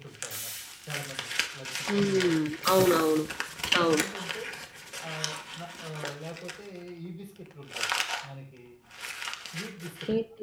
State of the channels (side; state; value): both; identical; correlation 1.00